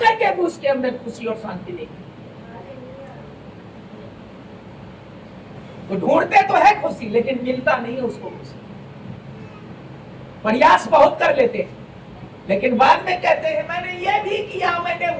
भी उसके अंदर खुशी और शांति नहीं। वो ढूंढते तो है खुशी, लेकिन मिलता नहीं है उसको खुशी। प्रयास बहुत कर लेते हैं, लेकिन बाद में कहते हैं मैंने ये भी किया, मैंने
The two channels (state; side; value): identical; both; correlation 1.00